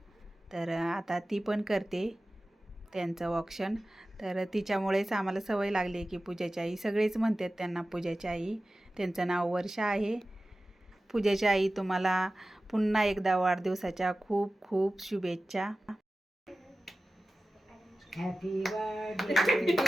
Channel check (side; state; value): both; normal; correlation 0.95